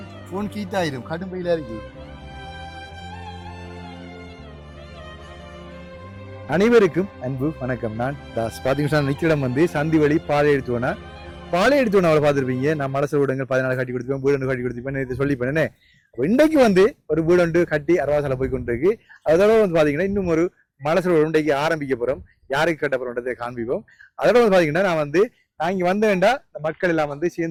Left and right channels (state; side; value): identical; both; correlation 1.00